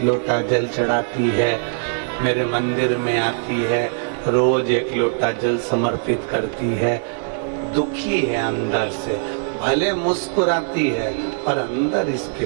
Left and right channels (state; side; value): silent; left; 65 dB below the other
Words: लोटा जल चढ़ाती है, मेरे मंदिर में आती है, रोज एक लोटा जल समर्पित करती है। दुखी है अंदर से, भले मुस्कुराती है पर अंदर इसके